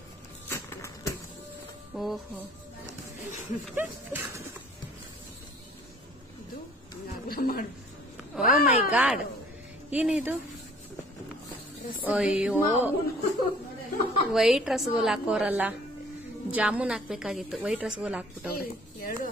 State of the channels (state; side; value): normal; both; correlation 0.54